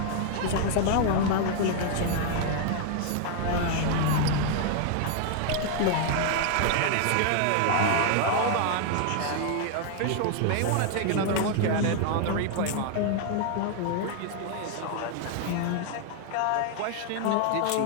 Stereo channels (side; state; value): both; different; correlation 0.00